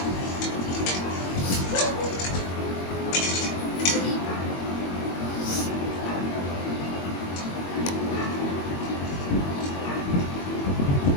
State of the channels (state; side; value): late; right; 22 ms